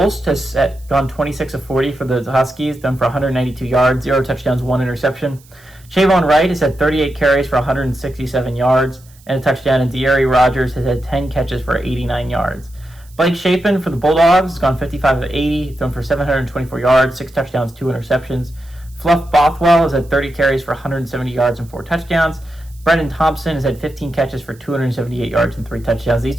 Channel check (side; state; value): right; noise; hiss, 28 dB below the sound